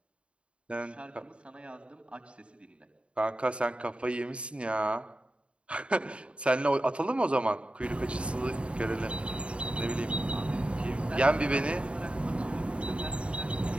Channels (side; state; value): left; late; 0.058 ms